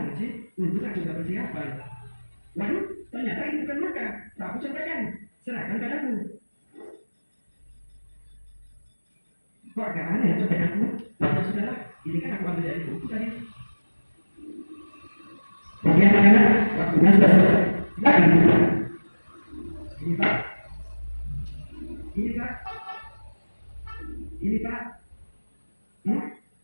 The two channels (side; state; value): both; inverted; correlation -1.00